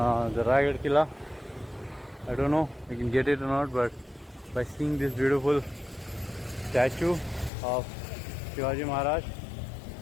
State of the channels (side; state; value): right; drops out; at 7.5 s